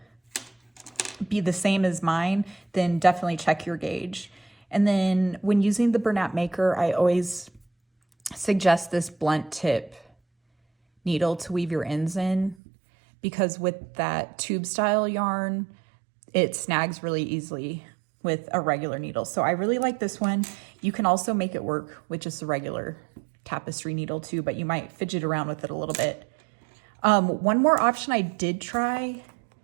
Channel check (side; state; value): left; drops out; at 12.6 s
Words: be the same as mine, then definitely check your gauge. And then when using the Bernat Maker, I always suggest this blunt tip needle to weave your ends in, because with that tube style yarn, it snags really easily with a regular needle. So I really like this one. You can also make it work with just a regular tapestry needle too, but you might fidget around with it a little bit. One more option I did try,